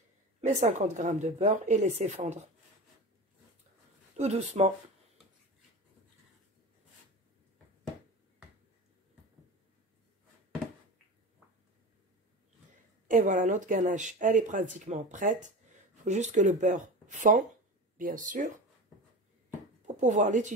mes 50 grammes de beurre et laisser fondre. Tout doucement. Et voilà, notre ganache, elle est pratiquement prête. Il faut juste que le beurre fond, bien sûr, pour pouvoir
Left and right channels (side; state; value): both; normal; correlation 0.29